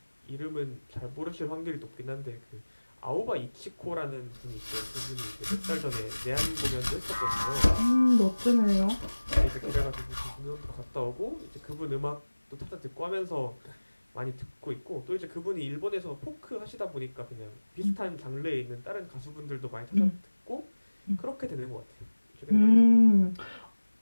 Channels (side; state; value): both; inverted; correlation -1.00